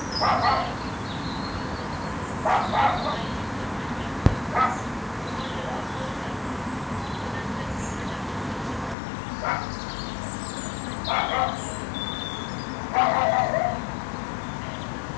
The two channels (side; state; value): right; drops out; at 9.0 s